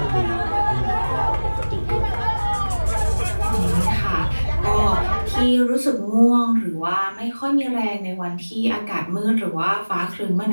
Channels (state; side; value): inverted; both; correlation -1.00